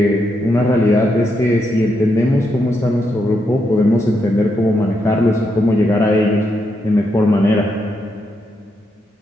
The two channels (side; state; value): both; normal; correlation 0.81